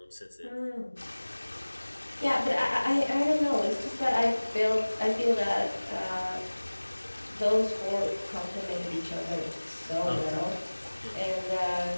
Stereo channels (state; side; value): inverted; both; correlation -1.00